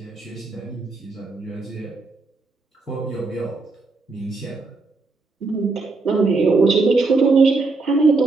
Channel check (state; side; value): quieter; left; 3.7 dB